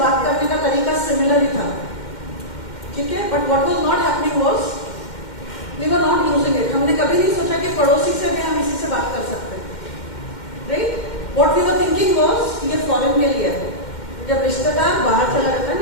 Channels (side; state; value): right; late; 2.1 ms